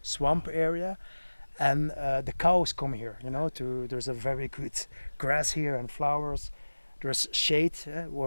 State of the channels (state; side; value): inverted; both; correlation -1.00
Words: swamp area, and the cows come here. There's a very good grass here and flowers. There's shade